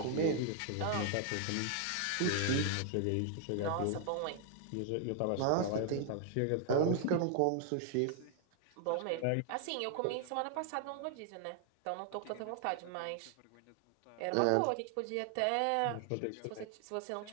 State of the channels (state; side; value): different; both; correlation 0.00